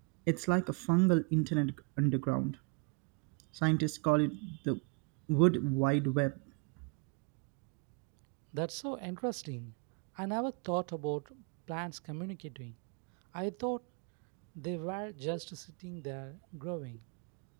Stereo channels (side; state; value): left; quieter; 34.0 dB